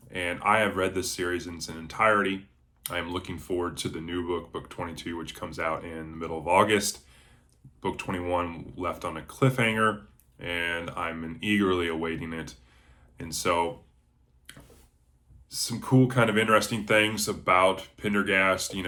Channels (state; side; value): identical; both; correlation 1.00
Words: And I have read this series in its entirety. I am looking forward to the new book, Book 22, which comes out in the middle of August. Book 21 left on a cliffhanger, and I'm eagerly awaiting it. And so, some cool kind of interesting things about Pendergast,